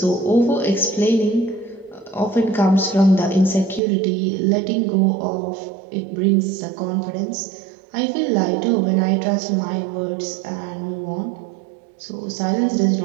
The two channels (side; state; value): left; drops out; at 3.8 s